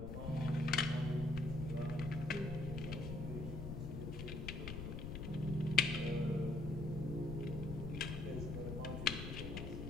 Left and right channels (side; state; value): left; noise; rumble, 5 dB below the sound